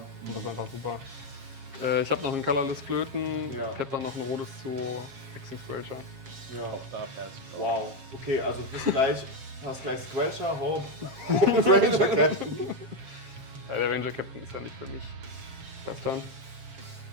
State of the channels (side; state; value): left; late; 7.4 ms